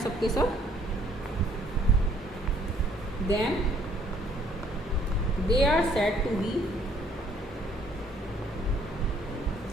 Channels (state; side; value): normal; both; correlation 0.62